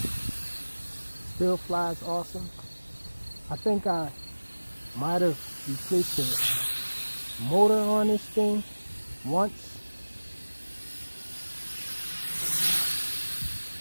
Still flies awesome. I think I might have replaced the motor on this thing once.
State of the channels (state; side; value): inverted; both; correlation -1.00